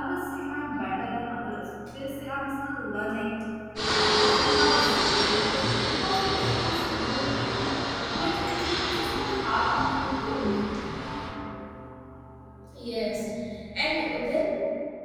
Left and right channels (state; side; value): identical; both; correlation 1.00